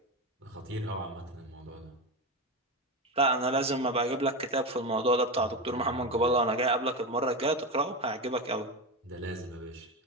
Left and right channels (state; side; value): normal; both; correlation 0.17